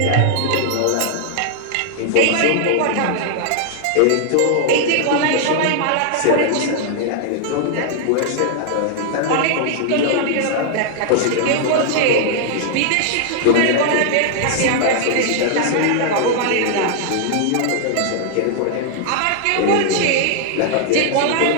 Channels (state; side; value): different; both; correlation -0.01